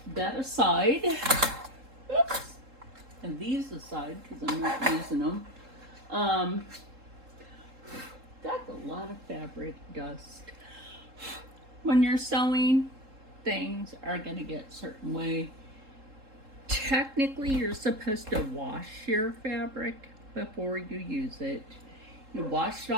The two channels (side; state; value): left; late; 3.7 ms